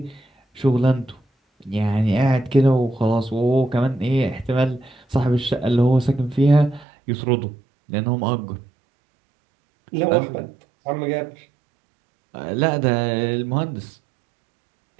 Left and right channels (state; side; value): drops out; left; at 6.9 s